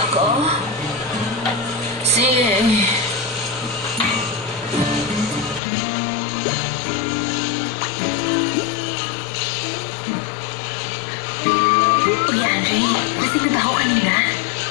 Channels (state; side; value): drops out; right; at 5.6 s